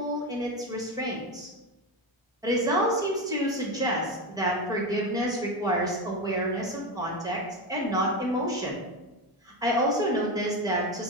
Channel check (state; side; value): normal; both; correlation 0.16